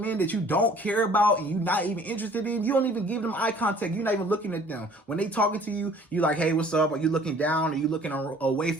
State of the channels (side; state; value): both; normal; correlation 0.53